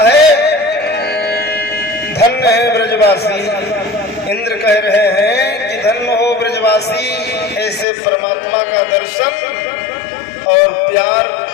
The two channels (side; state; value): right; drops out; at 7.9 s